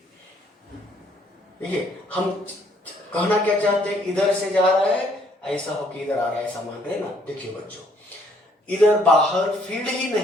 देखिए, हम कहना क्या चाहते हैं? इधर से जा रहा है, ऐसा हो कि इधर आ रहा है, ऐसा मान रहे ना। देखिए बच्चों, इधर बाहर फील्ड ही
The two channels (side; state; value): both; normal; correlation 0.65